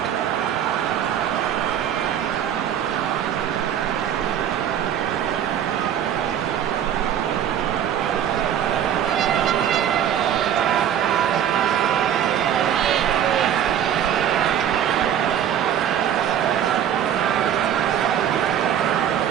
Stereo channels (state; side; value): quieter; left; 9.7 dB